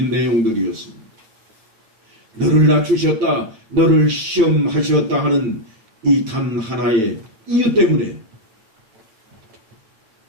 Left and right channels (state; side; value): late; left; 9.2 ms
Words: 내용들이었습니다. 너를 낮추셨다, 너를 시험하셨다 하는 이 단 하나의 이유 때문에